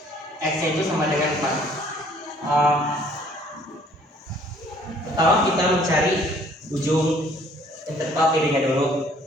x nya itu sama dengan 4. Pertama kita mencari ujung interval kirinya dulu.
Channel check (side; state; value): both; normal; correlation 0.59